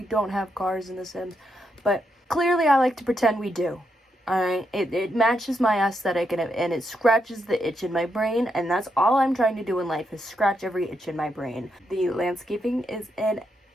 don't have cars in the Sims, but clearly I like to pretend we do. Alright, it matches my aesthetic and it scratches the itch in my brain, and that's all I'm trying to do in life is scratch every itch in my brain. The landscaping is an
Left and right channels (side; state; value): both; normal; correlation 0.81